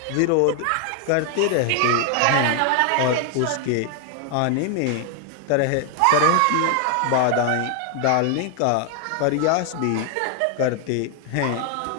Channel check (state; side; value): different; both; correlation 0.00